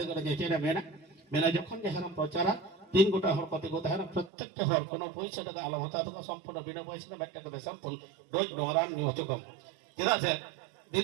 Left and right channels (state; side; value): drops out; left; at 4.3 s